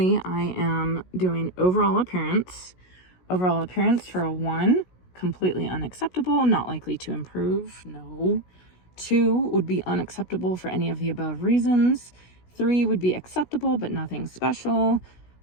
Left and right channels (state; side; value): late; right; 16 ms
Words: I am doing overall appearance. Overall appearance for a 1, completely unacceptable, not likely to improve, no. 2 would be unacceptable for any of the above reasons. 3 would be acceptable, but nothing special.